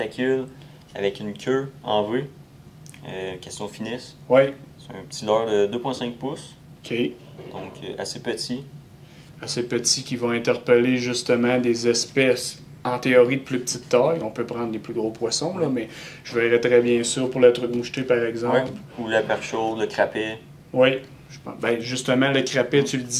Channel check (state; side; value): identical; both; correlation 1.00